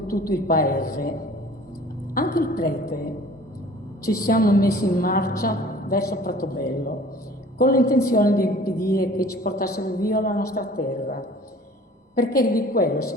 tutto il paese, anche il prete, ci siamo messi in marcia verso Pratobello, con l'intenzione di impedire che ci portassero via la nostra terra, perché di quello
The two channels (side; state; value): both; normal; correlation 0.48